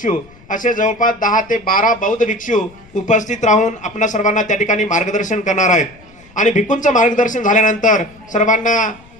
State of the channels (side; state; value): left; noise; rumble, 26 dB below the sound